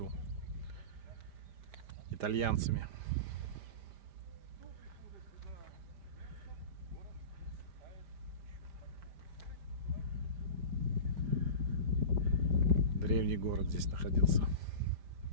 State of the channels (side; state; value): left; late; 5.0 ms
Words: итальянцами. Древний город здесь находился.